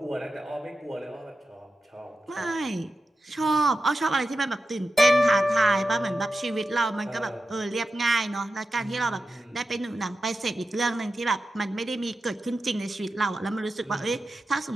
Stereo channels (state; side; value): normal; both; correlation 0.91